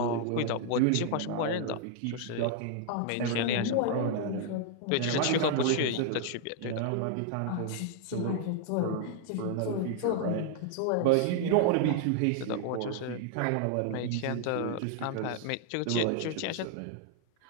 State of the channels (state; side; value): different; both; correlation 0.00